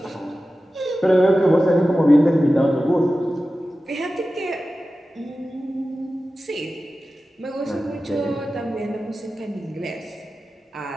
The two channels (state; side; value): normal; both; correlation 0.94